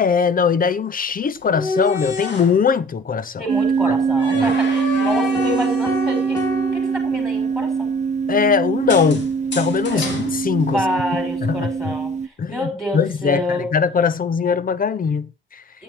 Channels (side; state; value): both; normal; correlation 0.48